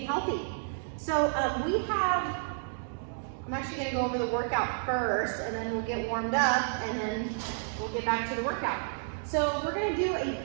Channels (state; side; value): silent; left; digital silence